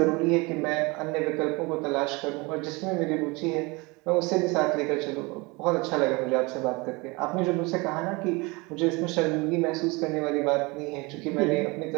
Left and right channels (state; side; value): quieter; left; 25.9 dB